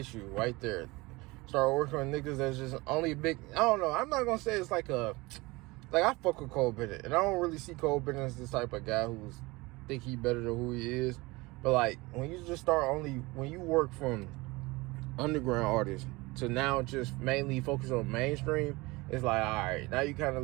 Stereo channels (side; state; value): left; quieter; 22.9 dB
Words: right there. Start working with niggas that's just only big. I don't know. I'm not gonna say it's like I fuck with Cole Bennett, and I don't really see Cole Bennett as this type of guy who's think he better than who he is. But like when you just when you work from underground artists to now just mainly focus on mainstream, it's like, all right, now you kind of